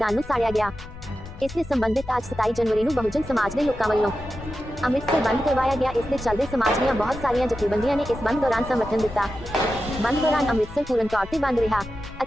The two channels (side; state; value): left; noise; rumble, 14 dB below the sound